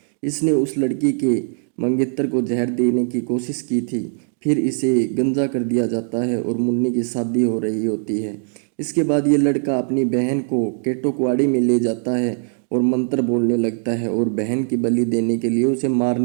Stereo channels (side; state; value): left; silent; digital silence